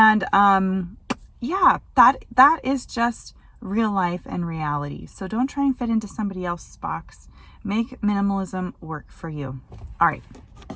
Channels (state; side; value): identical; both; correlation 1.00